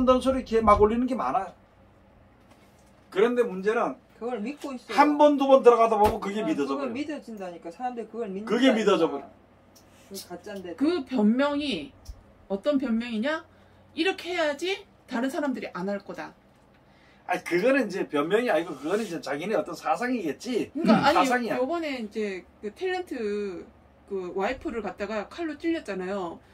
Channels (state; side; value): identical; both; correlation 1.00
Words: 되는 소리 걔 막 올리는 게 많아요. 그런데 문제는 그걸 믿고 있어. 한 번, 두 번 들어가다 보면 그게 믿어져 그걸 버려. 믿어진다니까. 사람들이 그걸 그게 믿어져 버려. 그 가짜인데. 그 변명이 어떤 변명이냐? 이렇게 해야지 다른 사람들이 안 할 거다. 아니 그거는 이제 변명이 아니고 그거는 이제 자기네 어떤 사상이겠지. 그러니까 아니 사상이야. 요번에 이제 그 탤런트 그 와이프를 갖다가 칼로 찔렸잖아요.